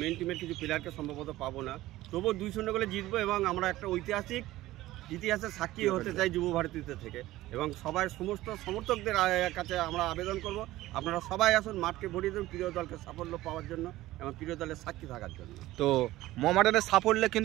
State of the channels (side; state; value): left; quieter; 16.5 dB